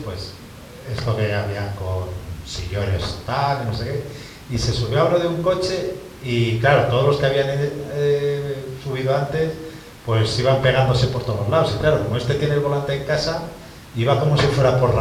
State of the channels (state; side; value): identical; both; correlation 1.00